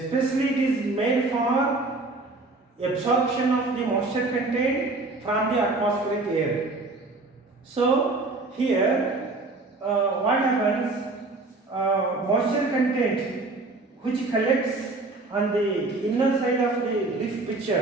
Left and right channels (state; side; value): quieter; left; 3.3 dB